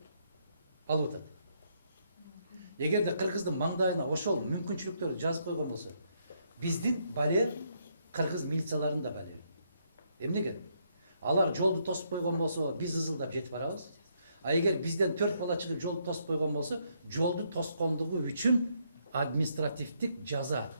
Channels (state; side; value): inverted; both; correlation -0.74